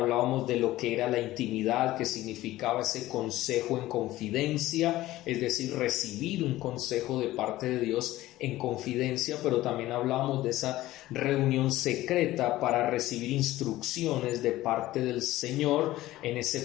de lo que era la intimidad, que significaba ese consejo en confidencia, es decir, recibir un consejo de parte de Dios en confidencia, pero también hablábamos de esa reunión secreta para recibir instrucciones de parte del Señor en ese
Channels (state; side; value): quieter; right; 16.2 dB